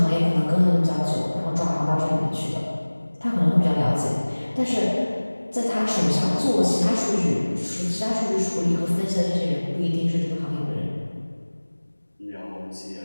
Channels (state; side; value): inverted; both; correlation -1.00